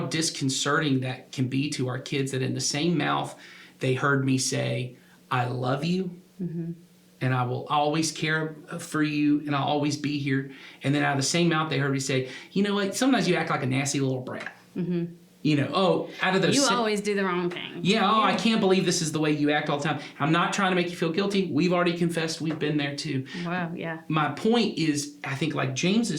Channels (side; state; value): both; identical; correlation 1.00